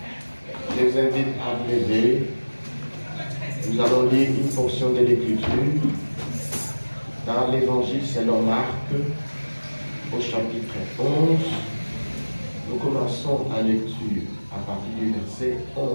Je vous invite à vous lever. Nous allons lire une portion de l'Écriture dans l'Évangile selon Marc, au chapitre 11. Nous commençons la lecture à partir du verset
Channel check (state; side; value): inverted; both; correlation -1.00